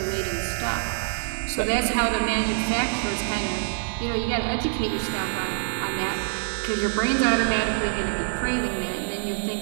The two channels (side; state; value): left; silent; digital silence